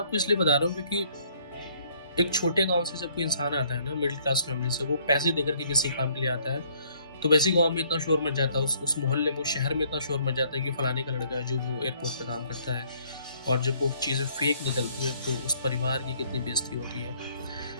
इसलिए बता रहा हूँ क्योंकि एक छोटे गांव से जब कोई इंसान आता है ना, मिडिल क्लास फैमिली से, वो पैसे देकर के किसी काम के लिए आता है, तो वैसे गांव में इतना शोर मच जाता है, उस मोहल्ले में, उस शहर में इतना शोर मच जाता है कि फलाने का लड़का है जो वो एयरपोर्ट पे काम करता है, और जब वो चीज़ें फेक निकलती हैं तो उस परिवार की कितनी बेइज्जती होती है।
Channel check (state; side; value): inverted; both; correlation -0.64